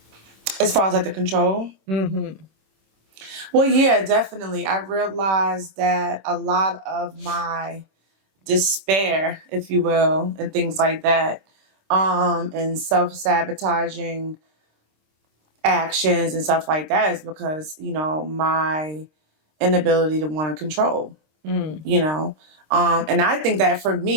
As far as like the control? Well, yeah, definitely. I realized that a lot of my despair, if you will, and things like that, and self-sabotaging actions and stuff like that is because, my inability to want to control, and I think that for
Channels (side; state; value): left; late; 26 ms